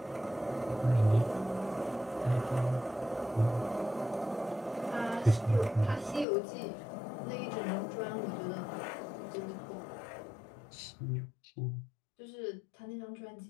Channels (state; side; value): drops out; right; at 6.2 s